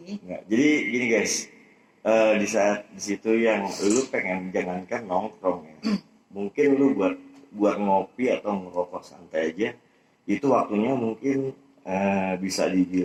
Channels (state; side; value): identical; both; correlation 1.00